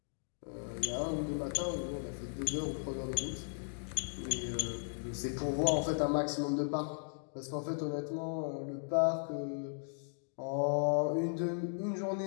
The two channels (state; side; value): silent; right; digital silence